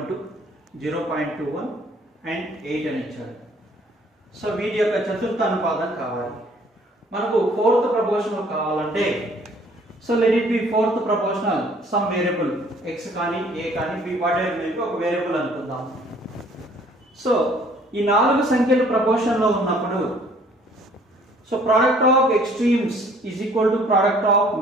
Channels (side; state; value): both; normal; correlation 0.58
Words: 0.21 and 8 అని ఇచ్చారు. సో వీటి యొక్క చతుర్థ అనుపాతం కావాలి. మనకు ఫోర్త్ ప్రపోర్షనల్ కావాలంటే so let it be fourth proportional some variable x కానీ a కానీ b what ever may be ఒక వేరియబుల్ అనుకుందాం. సో ఈ నాలుగు సంఖ్యలు ప్రపోర్షన్ లో ఉన్నప్పుడు so product of extremes is equal to product of